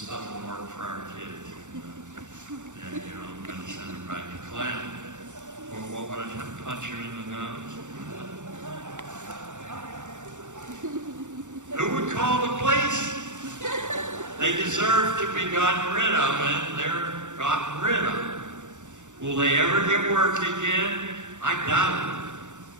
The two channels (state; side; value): late; left; 0.85 ms